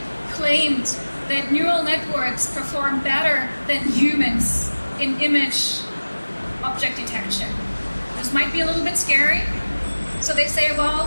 claimed that neural networks perform better than humans in image object detection. This might be a little bit scary. So they say,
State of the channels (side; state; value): both; inverted; correlation -1.00